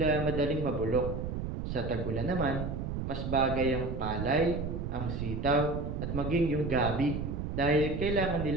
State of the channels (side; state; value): right; noise; rumble, 4 dB below the sound